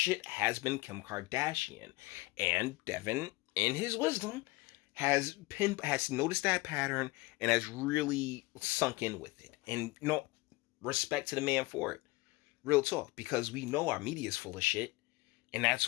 has been Kim Kardashian. And Devin, in his wisdom, has noticed that pattern and has really sunk in with it. And respect to the man for it. Real talk, because we know our media is full of shit. And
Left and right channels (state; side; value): quieter; right; 22.5 dB